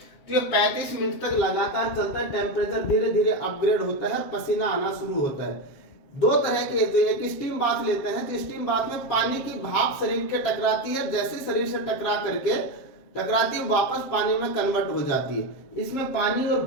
तो ये 35 मिनट तक लगातार चलता है, टेम्परेचर धीरे धीरे अपग्रेड होता है, पसीना आना शुरू होता है। दो तरह के, तो एक स्टीम बाथ लेते हैं, तो स्टीम बाथ में पानी की भाप शरीर के टकराती है, जैसे शरीर से टकराती है वापस पानी में कन्वर्ट हो जाती है। इसमें पानी और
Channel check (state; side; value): late; right; 7.6 ms